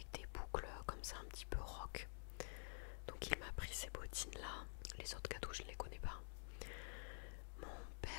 des boucles comme ça un petit peu rock. Donc il m'a pris ces bottines là. Les autres cadeaux je ne les connais pas. Mon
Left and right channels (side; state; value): right; silent; digital silence